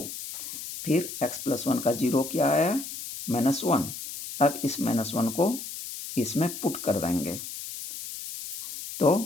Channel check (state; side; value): noise; left; hiss, 9 dB below the sound